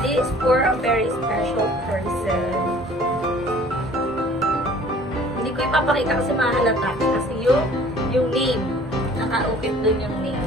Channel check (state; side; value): normal; both; correlation 0.51